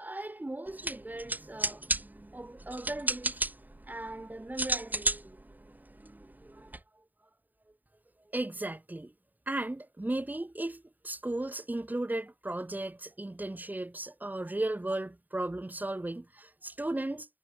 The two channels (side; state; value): left; late; 0.085 ms